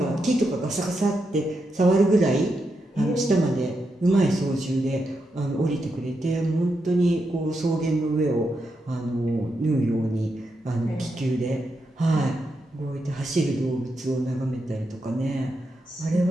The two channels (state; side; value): normal; both; correlation 0.84